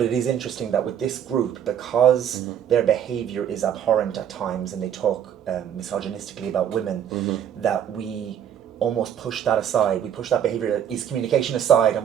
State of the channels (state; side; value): quieter; left; 9.4 dB